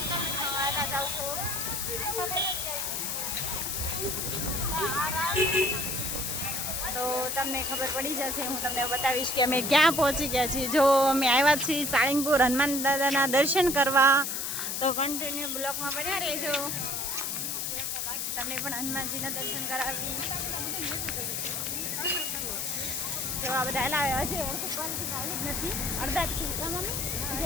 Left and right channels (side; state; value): left; noise; hiss, 2 dB below the sound